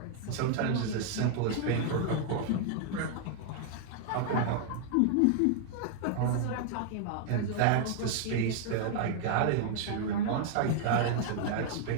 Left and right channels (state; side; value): different; both; correlation -0.01